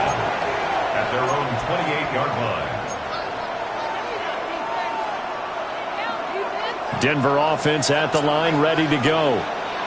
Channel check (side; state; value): both; identical; correlation 1.00